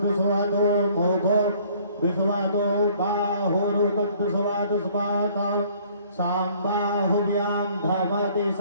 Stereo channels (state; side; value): inverted; both; correlation -0.58